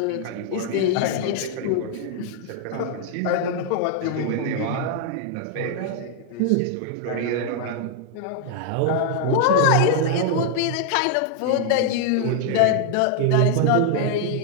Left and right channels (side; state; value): both; different; correlation 0.00